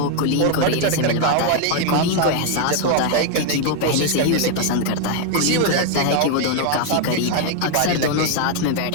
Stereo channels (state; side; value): different; both; correlation 0.00